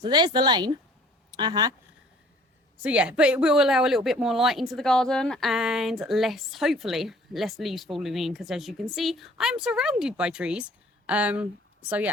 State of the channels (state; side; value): normal; both; correlation 0.53